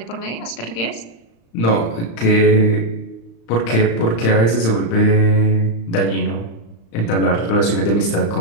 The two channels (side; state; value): right; late; 35 ms